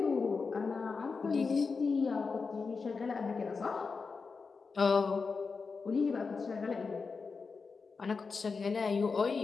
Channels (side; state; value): right; quieter; 4.8 dB